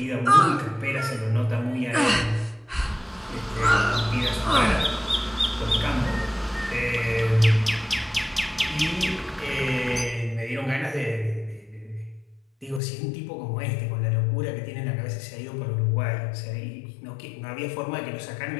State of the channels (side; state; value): right; drops out; at 12.8 s